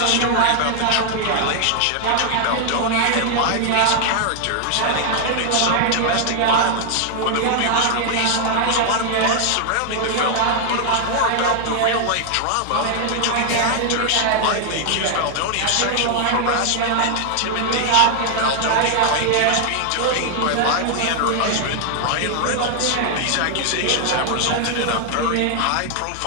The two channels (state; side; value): different; both; correlation 0.00